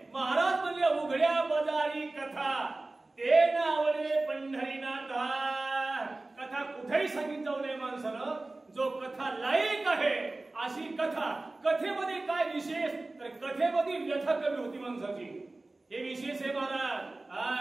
महाराज म्हणले उघड्या बाजारी कथा ते नावले पंढरीनाथा. कथा कुठेही सांगितलं जाऊ नये माणसानं. जो कथा लायक आहे अशी कथा. कथेमध्ये काय विशेष? तर कथेमध्ये व्यथा कमी होती माणसाची. हे विशेष आहे महाराज.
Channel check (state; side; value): quieter; left; 3.0 dB